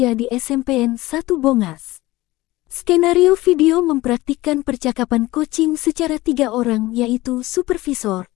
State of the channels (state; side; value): quieter; right; 18.8 dB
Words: di SMPN 1 Bongas. Skenario video mempraktikkan percakapan coaching secara 3 orang yaitu supervisor,